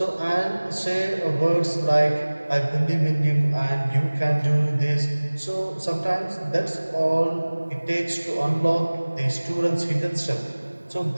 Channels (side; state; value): both; inverted; correlation -1.00